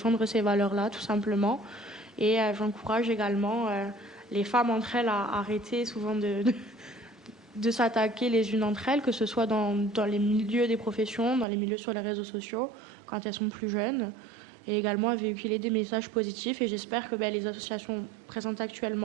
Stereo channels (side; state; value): left; drops out; at 11.5 s